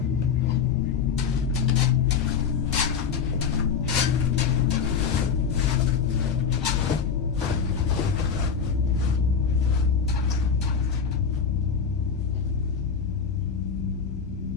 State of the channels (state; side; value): quieter; right; 6.5 dB